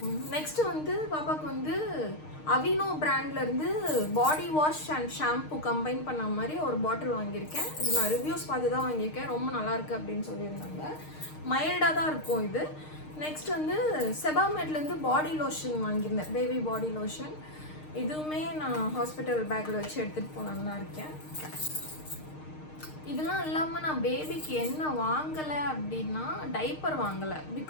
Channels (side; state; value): right; late; 6.5 ms